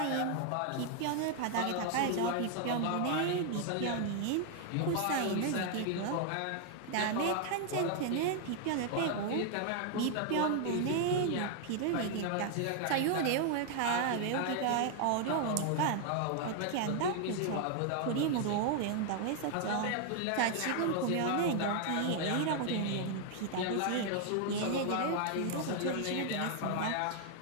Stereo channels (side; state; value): both; different; correlation 0.00